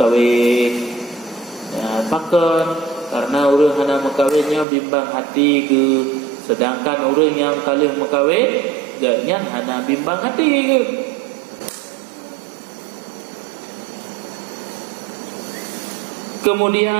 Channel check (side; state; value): left; drops out; at 4.7 s